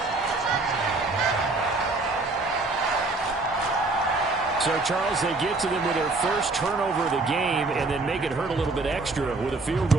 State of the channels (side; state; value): left; quieter; 3.4 dB